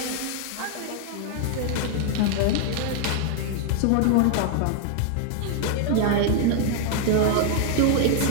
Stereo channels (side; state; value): both; different; correlation 0.00